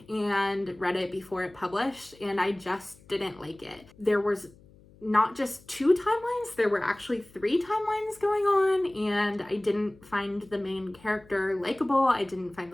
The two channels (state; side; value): noise; left; hum, 26 dB below the sound